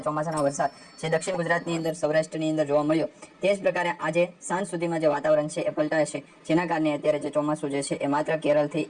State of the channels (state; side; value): identical; both; correlation 1.00